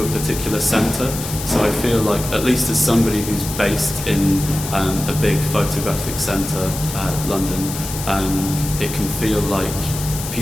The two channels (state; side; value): noise; left; hiss, 8 dB below the sound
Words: a particular centre. So I feel like, at least as somebody who's based in a big photographic centre, London, it can feel like